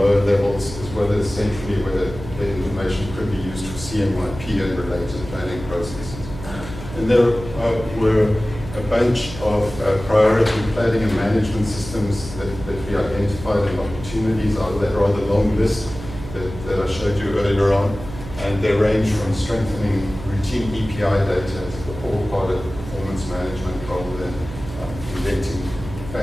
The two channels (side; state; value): right; noise; hum, 12 dB below the sound